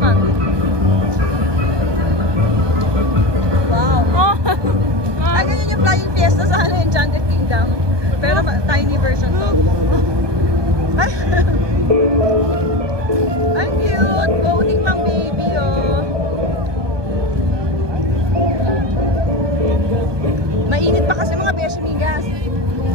Wow. Oh! Ay, ganyan yung Flying Fiesta sa Enchanted Kingdom. Pero tiny version to. Ay! Ang cute! Boating pang baby, oh. Mainit pa kasi mga beshi migas.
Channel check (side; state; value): left; late; 1.2 ms